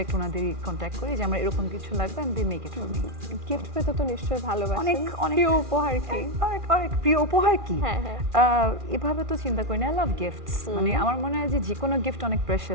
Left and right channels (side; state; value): left; late; 2.4 ms